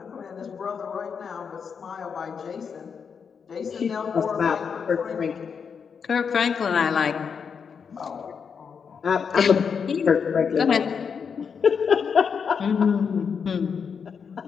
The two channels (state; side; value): quieter; right; 6.4 dB